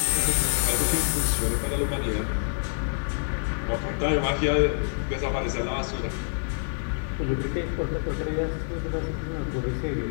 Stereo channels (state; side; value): silent; right; digital silence